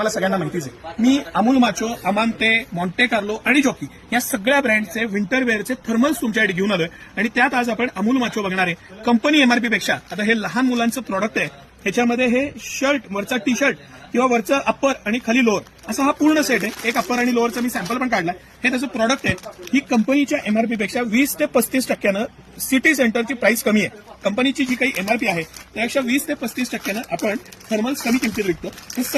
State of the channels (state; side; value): identical; both; correlation 1.00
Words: सगळ्यांना माहितीच आहे. मी अमूल माचो, अमांते, मॉन्टे कार्लो आणि जॉकी या सगळ्या ब्रँडचे विंटर वेअरचे थर्मल्स तुमच्यासाठी घेऊन आलोय आणि त्यात आज आपण अमूल माचो बघणार आहे. कंपनी एमआरपी पेक्षा आता हे लहान मुलांचं प्रॉडक्ट आहे. ह्याच्यामध्ये हे शर्ट, वरचा टी शर्ट किंवा वरचं अप्पर आणि खाली लोअर असा हा पूर्ण सेट आहे. एक अप्पर आणि लोअरचा मी सॅम्पल पण काढला. हे त्याचं प्रॉडक्ट आहे. ही कंपनीच्या एमआरपी पेक्षा 20 ते 35% सिटी सेंटरची प्राइस कमी आहे. कंपनीची जी काही एमआरपी आहे त्यापेक्षा 20 ते 35% आपण थर्मल्स कमी किमतीत विकतो. हे